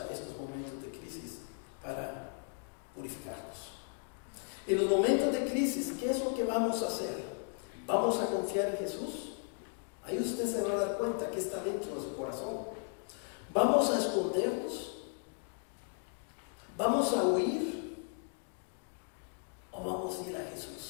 estos momentos de crisis para purificarnos. En los momentos de crisis, ¿qué es lo que vamos a hacer? ¿Vamos a confiar en Jesús? Ahí usted se va a dar cuenta que está dentro de su corazón. ¿Vamos a escondernos? ¿Vamos a huir? ¿O vamos vamos a ir a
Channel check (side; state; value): right; silent; 54 dB below the other